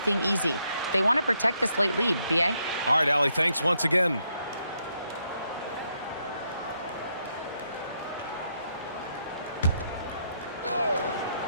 easy. They want to protect this late lead, B.A. All right, Allie, thanks once again.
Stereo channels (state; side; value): inverted; both; correlation -0.77